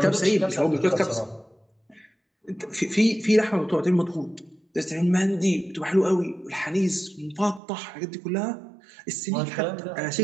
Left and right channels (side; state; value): left; drops out; at 7.6 s